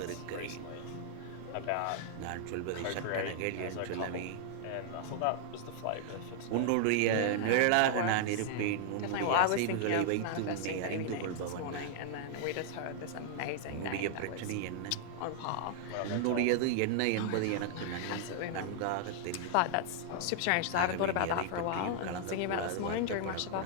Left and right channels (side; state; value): both; different; correlation -0.01